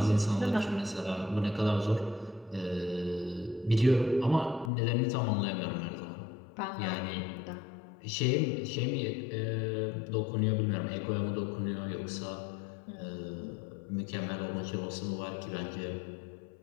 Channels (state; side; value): drops out; right; at 4.7 s